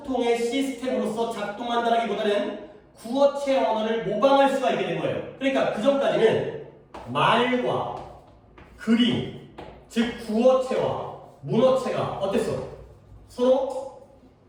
시스템으로서 작동한다기보다는 구어체 언어를 모방할 수가 있게 된 거예요. 그러니까 그 전까지는 말과 그림, 즉 구어체와 문어체가 어땠어? 서로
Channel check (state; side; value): identical; both; correlation 1.00